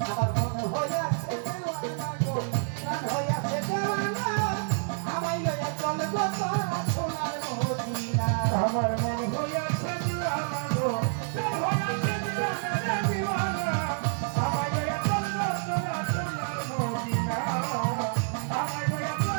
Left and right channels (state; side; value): silent; left; digital silence